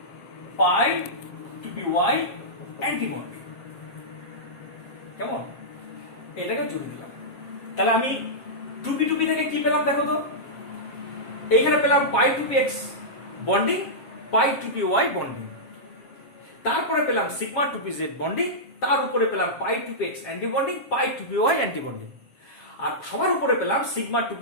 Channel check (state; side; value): late; right; 7.3 ms